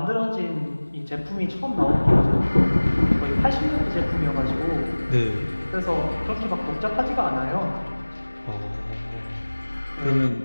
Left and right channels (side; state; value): both; inverted; correlation -1.00